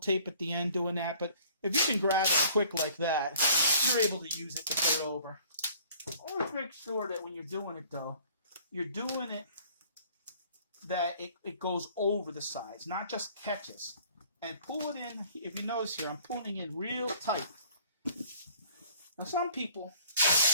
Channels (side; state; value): both; inverted; correlation -0.54